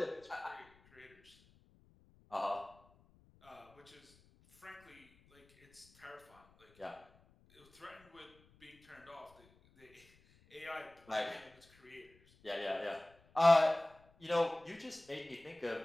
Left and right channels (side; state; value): left; noise; rumble, 29 dB below the sound